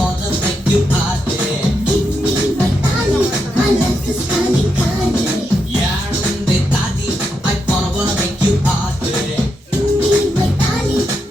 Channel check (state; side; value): normal; both; correlation 0.83